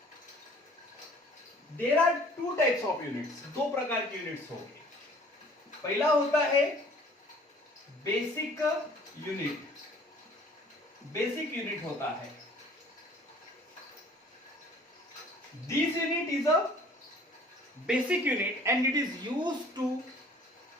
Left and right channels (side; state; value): both; normal; correlation 0.52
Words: There are 2 types of units. 2 प्रकार की यूनिट्स हो गई. पहला होता है बेसिक यूनिट. बेसिक यूनिट होता है. This unit is a basic unit and it is used to